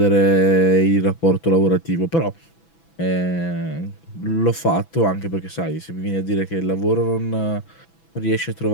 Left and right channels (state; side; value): late; right; 6.0 ms